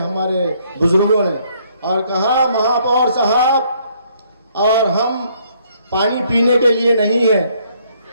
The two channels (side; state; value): both; inverted; correlation -0.67